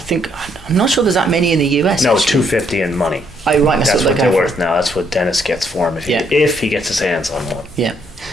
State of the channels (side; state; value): both; normal; correlation 0.70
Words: I'm not sure there's that many in the US. No, actually. 250 in money. Oh, right. That's what they're worth now. That's what Dennis gets for him if he gets his hands on one. Yeah.